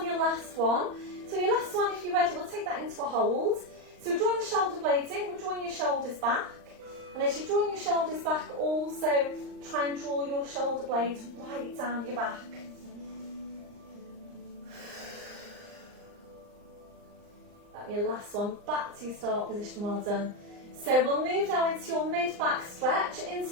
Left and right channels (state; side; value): late; left; 39 ms